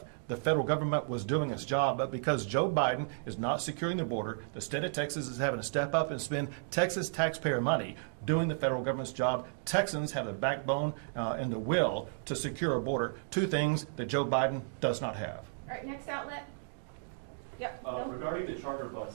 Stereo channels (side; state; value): left; silent; digital silence